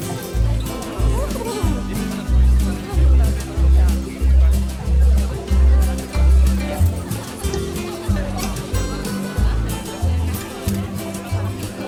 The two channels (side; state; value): both; identical; correlation 1.00